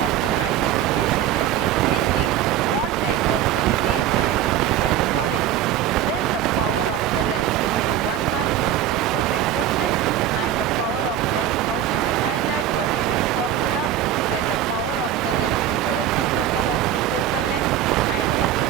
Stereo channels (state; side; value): quieter; left; 10.7 dB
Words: the magnification m is changing, what type of the image and we can call it. Then the power of the lens, it is a 1 mark most important question, and the power of lens, how to define that, what is its formula. Then the power of the lens is the reciprocal of the focal length, and what is